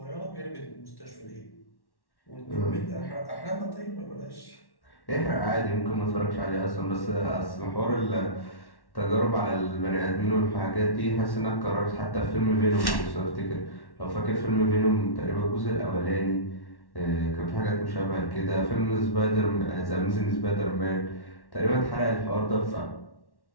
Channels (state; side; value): late; right; 1.1 ms